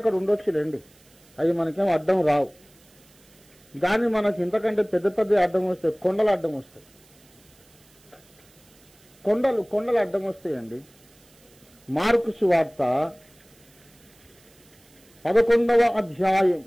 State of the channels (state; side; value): noise; right; hiss, 29 dB below the sound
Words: ఉండొచ్చులేండి, అవి మనకేం అడ్డం రావు. కానీ మనకి ఇంతకంటే పెద్ద పెద్ద అడ్డం వస్తాయి. కొండలు అడ్డం వస్తాయి. కొండలు అడ్డం వస్తాయండి. మార్కు సువార్త 11వ అధ్యాయం